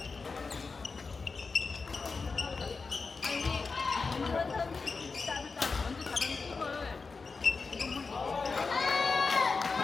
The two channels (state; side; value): quieter; right; 4.5 dB